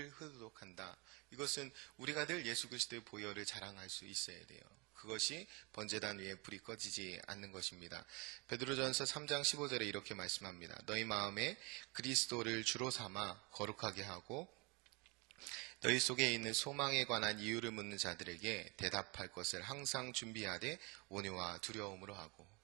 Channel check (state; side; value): quieter; left; 28.7 dB